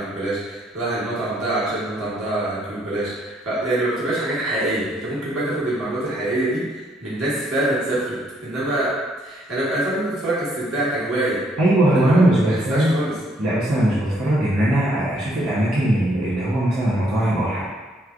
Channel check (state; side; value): normal; both; correlation 0.69